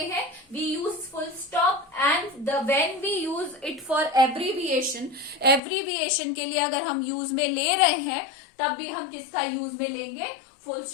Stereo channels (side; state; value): right; drops out; at 5.6 s